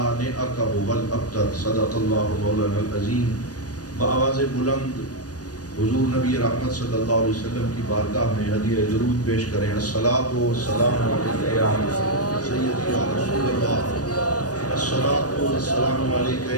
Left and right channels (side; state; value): right; late; 0.68 ms